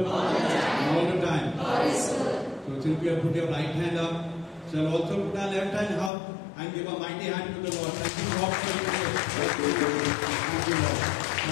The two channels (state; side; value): drops out; right; at 6.1 s